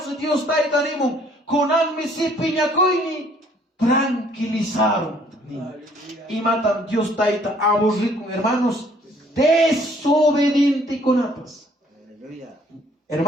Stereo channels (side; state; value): both; normal; correlation 0.61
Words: Dios taitanimo, conan mi si piñacoini, tranquilizaron. Y matan Dios taita, aburrido, hermanos, desobediente con atas. Aleluya.